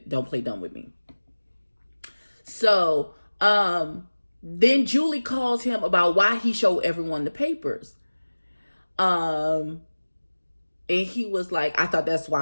Don't play dumb with me. So then Julie calls him about why he showed everyone the papers. And he was like, I thought that's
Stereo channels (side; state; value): both; inverted; correlation -1.00